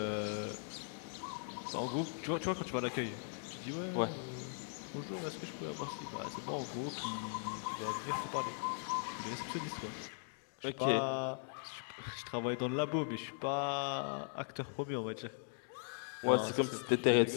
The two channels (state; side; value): silent; right; digital silence